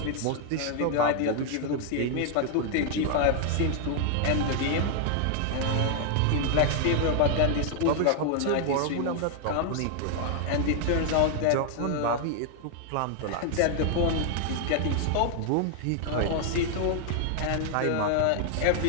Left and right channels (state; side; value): different; both; correlation 0.00